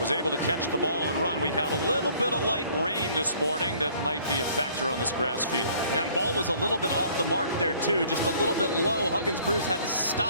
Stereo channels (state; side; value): inverted; both; correlation -0.57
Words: able to catch the ball and run. We had a little bit of light rain this morning that might be a factor on this grass field. Yeah, and ball was a little bit off the mark there too, just a little bit low. Huggins-Bruce had to